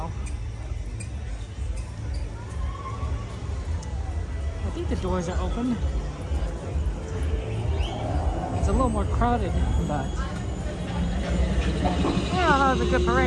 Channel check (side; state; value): both; identical; correlation 1.00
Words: I think the doors are open. It's a little more crowded, but yeah, that was a good